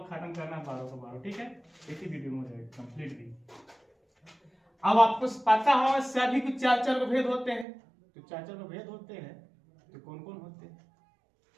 खत्म करना 12 को 12, ठीक है, एक ही वीडियो में हो जाएगा कंप्लीट भी। अब आपको पता होगा सभी कुछ 4 को भेद होते हैं, तो 4 को भेद होते हैं, तो कौन कौन होते हैं?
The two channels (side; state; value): left; drops out; at 7.7 s